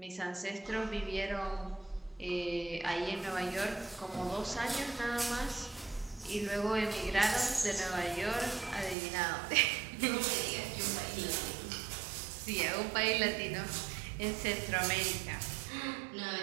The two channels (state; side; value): drops out; left; at 9.0 s